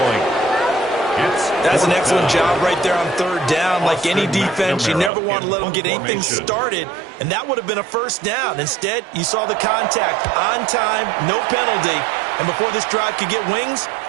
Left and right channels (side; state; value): left; drops out; at 5.1 s